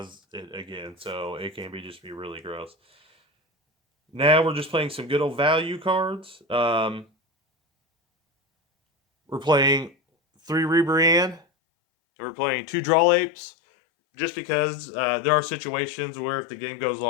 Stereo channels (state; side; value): drops out; right; at 11.4 s